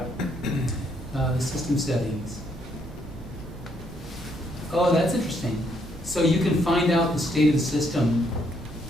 The system settings. Oh, that's interesting. So you can find out the state of the system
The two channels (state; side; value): normal; both; correlation 0.72